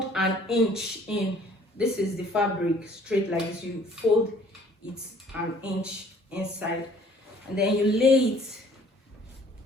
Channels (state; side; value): normal; both; correlation 0.56